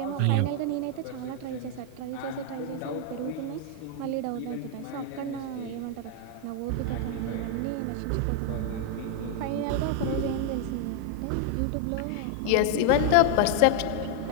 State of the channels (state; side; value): different; both; correlation 0.00